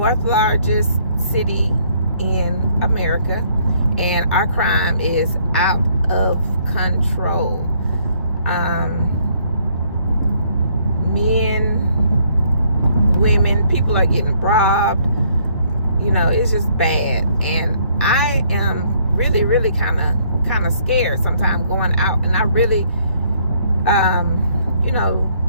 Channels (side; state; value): both; inverted; correlation -0.66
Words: largest city in America, and our crime is out of control. Men, women, people are getting robbed. It's just bad, and I am really kind of scared sometimes going out, and I really